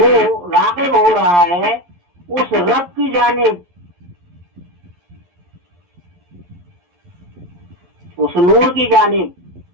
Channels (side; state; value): left; late; 11 ms